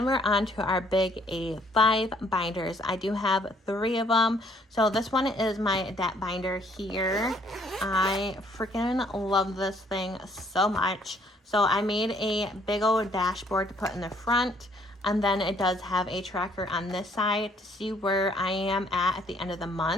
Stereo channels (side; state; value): both; normal; correlation 0.64